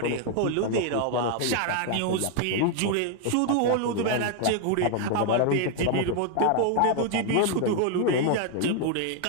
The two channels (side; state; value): both; different; correlation 0.01